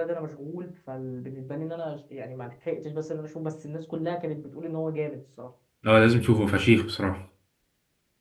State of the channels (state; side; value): identical; both; correlation 1.00